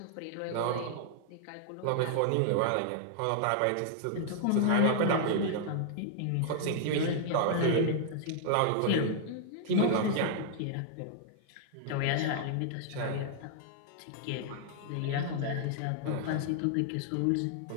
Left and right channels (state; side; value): different; both; correlation -0.01